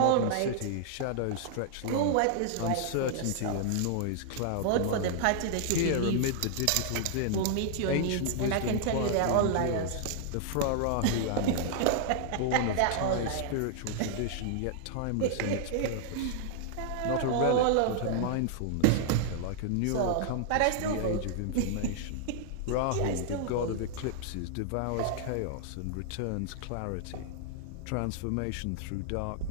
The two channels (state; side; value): different; both; correlation -0.01